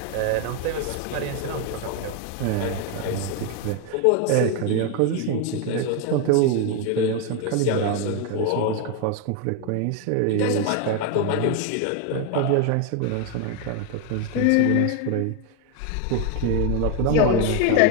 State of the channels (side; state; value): both; different; correlation 0.01